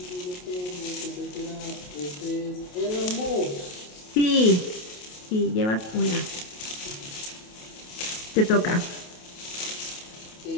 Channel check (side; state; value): right; late; 28 ms